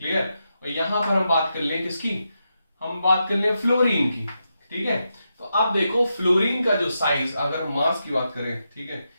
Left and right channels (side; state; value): both; inverted; correlation -0.86